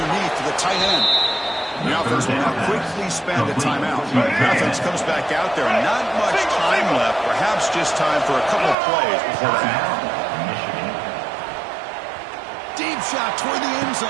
to the tight end. The offense will now quickly spend a timeout. The offense comes back out there. Not much time left. Perhaps just time for a couple of plays before the half. Deep shot toward the end zone.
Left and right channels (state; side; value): drops out; left; at 8.8 s